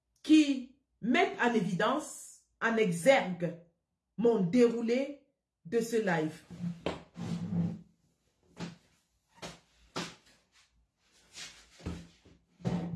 qui mettent en évidence, en exergue, mon déroulé de ce live.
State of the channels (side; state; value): both; identical; correlation 1.00